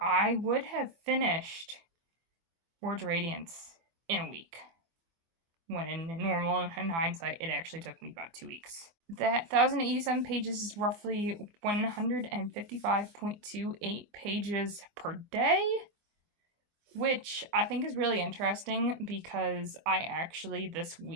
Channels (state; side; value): late; left; 24 ms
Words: would have finished Words of Radiance in a week, when in hindsight, it actually took me about 2 weeks. That 1,087 pages is roughly 155.28 pages per day, which I think is really interesting because I actually this